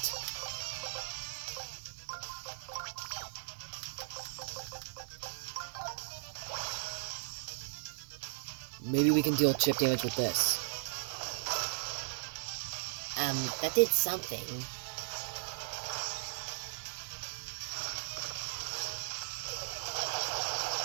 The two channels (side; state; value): left; silent; 53 dB below the other